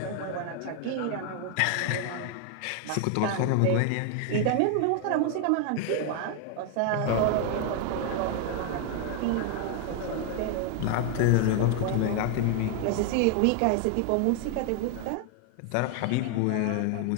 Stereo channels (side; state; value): both; different; correlation 0.00